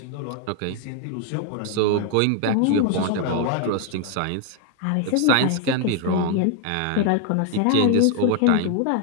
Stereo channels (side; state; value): both; different; correlation 0.01